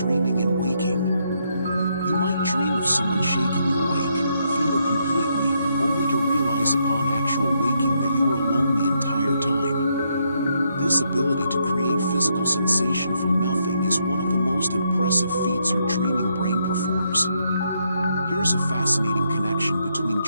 and waking. You might dream of someone shaking you awake, feel it completely, only to realize upon actual waking that you were alone the entire time. This ability to create physical sensation from nothing is one of the most impressive feats your dreaming brain performs. Here's a fascinating connection between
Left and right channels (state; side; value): inverted; both; correlation -0.77